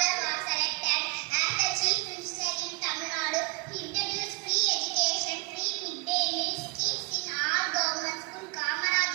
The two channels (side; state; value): left; quieter; 29.2 dB